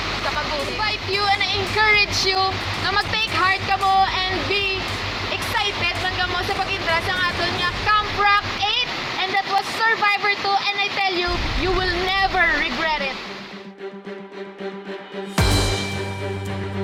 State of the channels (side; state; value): both; identical; correlation 1.00